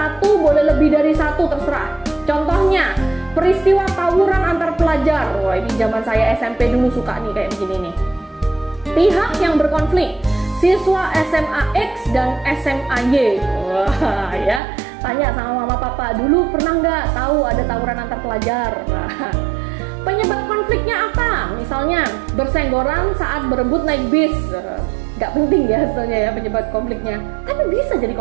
boleh lebih dari satu, terserah. Contohnya, peristiwa tawuran antar pelajar. Wah, ini zaman saya SMP dulu suka nih kayak begini nih. Pihak yang berkonflik, siswa SMA X dan SMA Y. Wah, ya. Tanya sama mama papa, dulu pernah nggak tahu ada tawuran antar pelajar? Nah, penyebab konfliknya apa? Misalnya bersenggolan saat berebut naik bis. Nggak penting ya sebenarnya ya penyebab konfliknya, tapi bisa jadi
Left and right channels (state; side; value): drops out; left; at 14.6 s